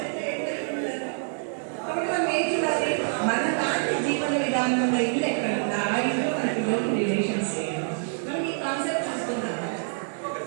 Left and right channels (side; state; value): left; silent; digital silence